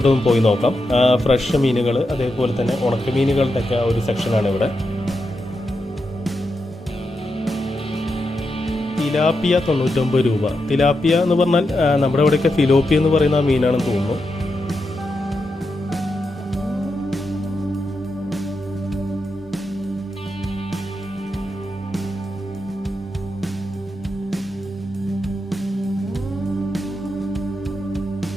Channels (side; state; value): both; normal; correlation 0.86